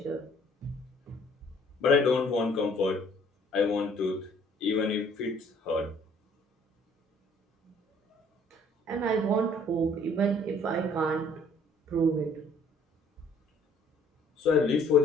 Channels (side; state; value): both; normal; correlation 0.59